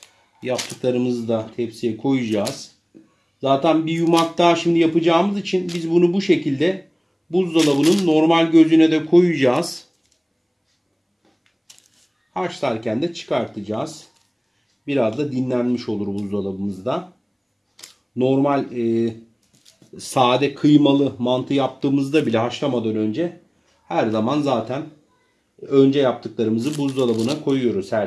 Yaptıklarımızı da tepsiye koyacağız. Zaten bir yumak daha şimdi yapacağımız için biz bunu bu şekilde buzdolabının normal gözüne de koyacağız. Haşlarken de çıkartacağız. Biraz da dinlenmiş olur buzdolabımızda. Normal sade kıymalı mantı yaptığımızda bile haşlamadan önce her zaman zaten önce yaptıklarımızı buzdolabına koyuyoruz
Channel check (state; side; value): identical; both; correlation 1.00